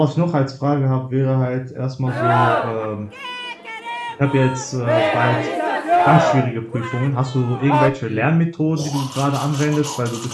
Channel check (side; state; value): both; identical; correlation 1.00